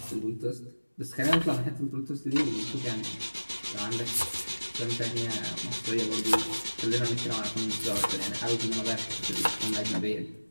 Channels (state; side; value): inverted; both; correlation -1.00